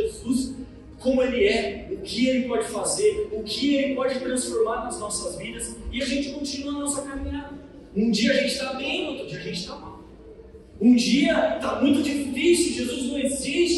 como Ele é, o que Ele pode fazer, o que Ele pode transformar nas nossas vidas, e a gente continua a nossa caminhada. Um dia a gente está bem, outro dia a gente está mal. Um dia está muito difícil, Jesus não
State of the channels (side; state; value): both; identical; correlation 1.00